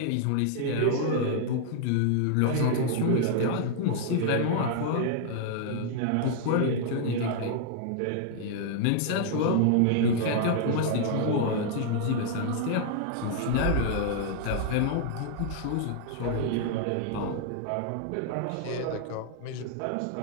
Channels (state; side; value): different; both; correlation 0.00